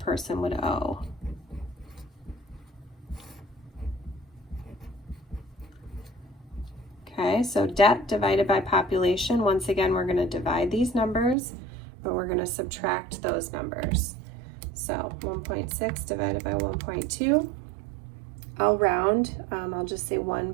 would owe. Okay, so debt divided by population. Once again, we're going to divide these numbers, but we're going to subtract those numbers. So 1.6 divided by 1.2. I'll round. I'll just say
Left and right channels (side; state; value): left; drops out; at 11.4 s